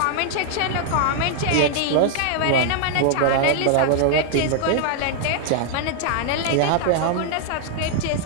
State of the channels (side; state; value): both; different; correlation 0.00